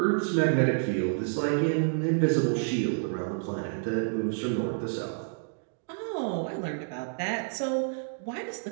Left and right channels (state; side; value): silent; left; digital silence